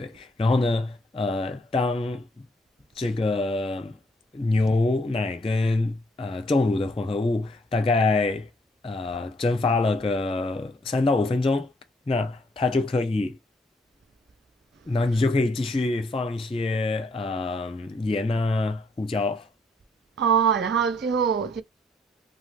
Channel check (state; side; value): normal; both; correlation 0.68